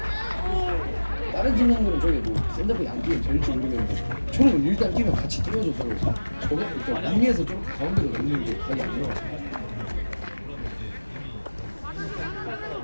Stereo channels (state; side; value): inverted; both; correlation -1.00